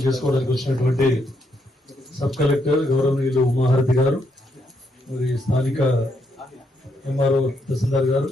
చేసుకోవడానికి వచ్చినటువంటి సబ్ కలెక్టర్ గౌరవనీయులు ఉమాహారతి గారు, మరి స్థానిక ఎంఆర్ఓ తహసీల్దార్ గారు,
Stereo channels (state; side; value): normal; both; correlation 0.77